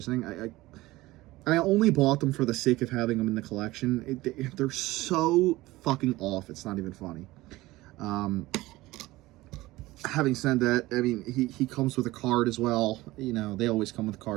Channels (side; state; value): left; quieter; 18.7 dB